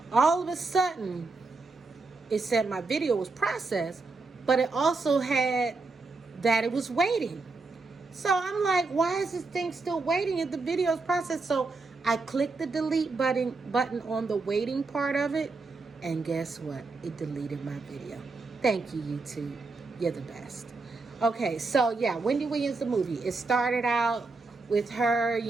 all of a sudden, it said my video was processed, but it also had that it was waiting. So I'm like, why is this thing still waiting if the video is processed? So I clicked the delete button on the waiting part of it, and guess what? It deleted my video. Thank you, YouTube. You're the best. Okay, so yeah, Wendy Williams, the movie. It started out with her,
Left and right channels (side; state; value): left; quieter; 3.8 dB